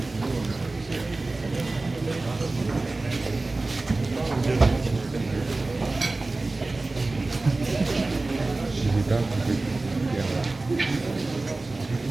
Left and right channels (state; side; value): quieter; left; 3.2 dB